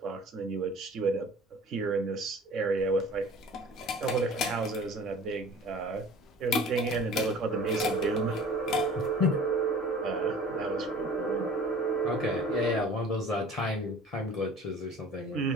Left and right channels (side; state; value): both; normal; correlation 0.45